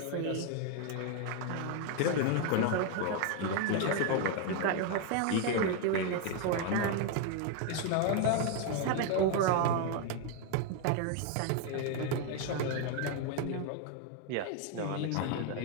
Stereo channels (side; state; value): both; different; correlation 0.01